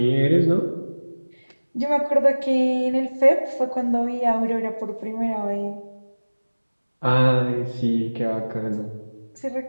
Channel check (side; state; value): both; inverted; correlation -1.00